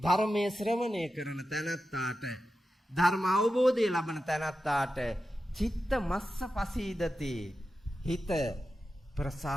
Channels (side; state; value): both; normal; correlation 0.91